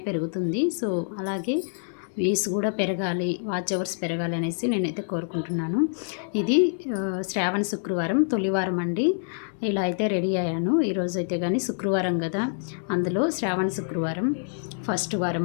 పెరుగుతుంది. సో అలాగే వ్యూస్ కూడా పెరగాలి, వాచ్ అవర్స్ పెరగాలి అనేసి నేనైతే కోరుకుంటున్నాను. ఇది శ్రావణ శుక్రవారం తొలివారం అండి. ఇలా అయితే రెడీ అయ్యాను. ఈరోజు అయితే కానీ శుక్రవారం కదా, అందులో శ్రావణ శుక్రవారం ఫస్ట్ వారం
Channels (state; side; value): silent; right; digital silence